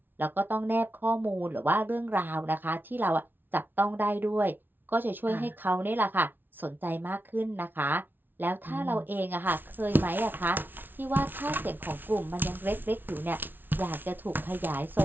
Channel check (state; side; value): late; left; 0.094 ms